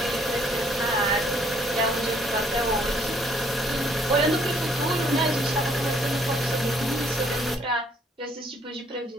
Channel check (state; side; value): normal; both; correlation 0.65